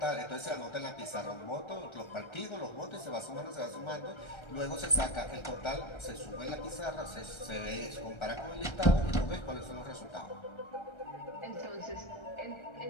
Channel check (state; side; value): late; right; 1.3 ms